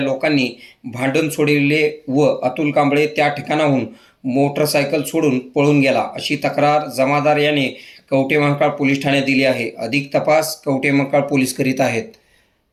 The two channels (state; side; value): identical; both; correlation 1.00